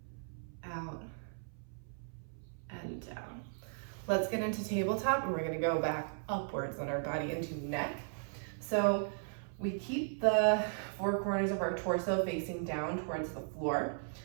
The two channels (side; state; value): left; silent; 53 dB below the other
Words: out, and down. Let's get into tabletop, and we're gonna go back upwards on our body into neck. So we keep the four corners of our torso facing down towards the floor.